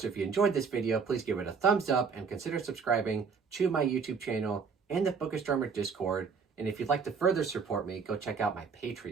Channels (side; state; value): left; quieter; 5.5 dB